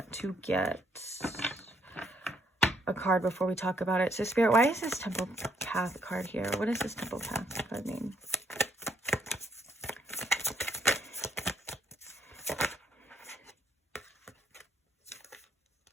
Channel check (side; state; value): both; normal; correlation 0.70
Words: to get a card before we talk about it. So Spirit, why is this Temple path card here? What does this Temple path card mean?